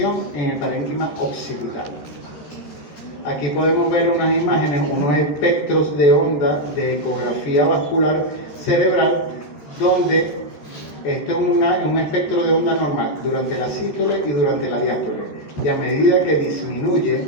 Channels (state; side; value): late; right; 13 ms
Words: en el parénquima occipital. Aquí podemos ver unas imágenes, unos espectros de onda de ecografía vascular cerebral, donde esto es un espectro de onda normal durante la sístole y durante la diástole. Y a medida que disminuye